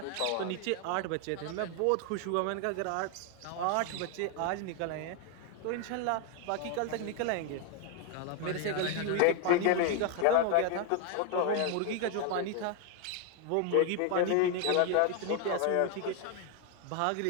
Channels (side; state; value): both; different; correlation 0.00